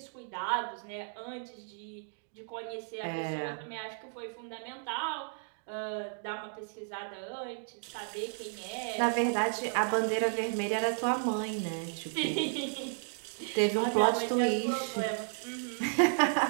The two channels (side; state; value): left; silent; digital silence